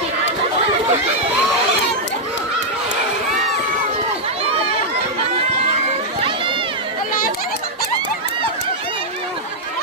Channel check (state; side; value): normal; both; correlation -0.05